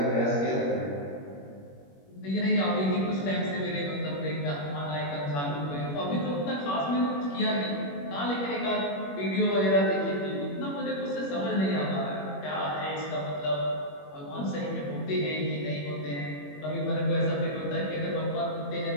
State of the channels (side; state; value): right; late; 21 ms